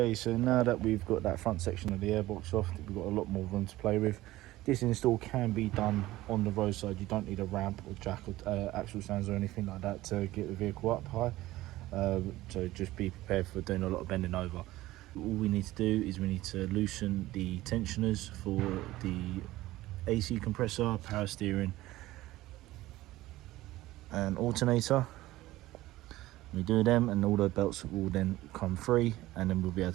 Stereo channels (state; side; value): quieter; left; 16.9 dB